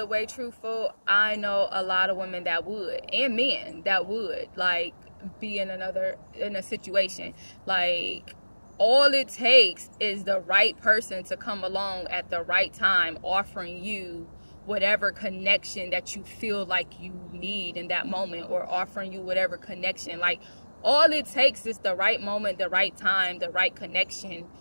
way truthful, I know a lot of women that would, and men that would, like, be in a situation. Like, all it takes is the right person to come along at the right time, offering you whatever connection that you feel like you need in that moment, or offering you whatever connection. Like, all it takes is the right moment, the right time, the right connection,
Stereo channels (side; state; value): both; inverted; correlation -1.00